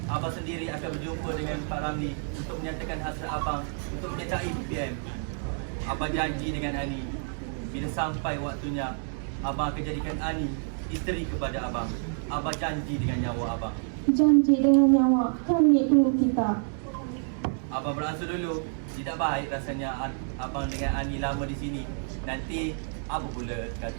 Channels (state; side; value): silent; left; 59 dB below the other